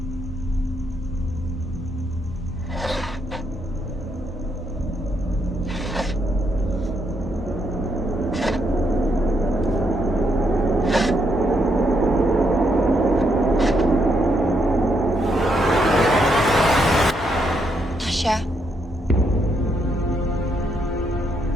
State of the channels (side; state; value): both; normal; correlation 0.77